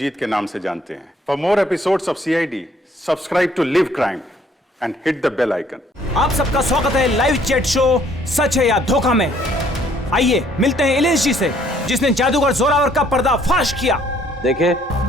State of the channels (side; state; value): both; normal; correlation 0.63